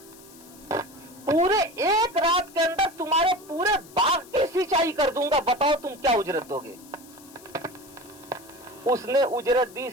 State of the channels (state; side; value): noise; left; hiss, 22 dB below the sound